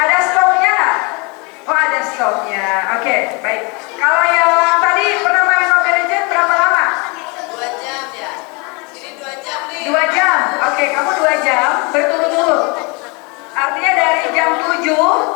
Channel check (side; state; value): right; quieter; 29.5 dB